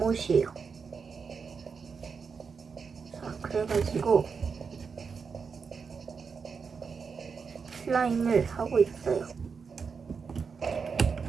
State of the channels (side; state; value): left; quieter; 5.6 dB